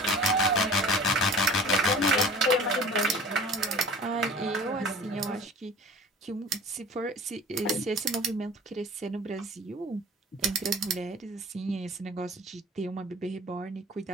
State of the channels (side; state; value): both; normal; correlation 0.43